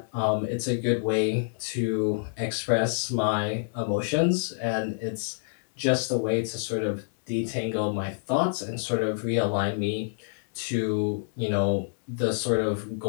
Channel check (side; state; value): right; silent; 60 dB below the other